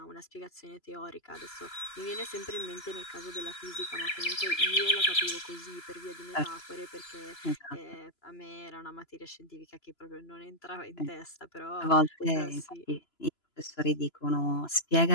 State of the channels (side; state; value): right; late; 3.0 ms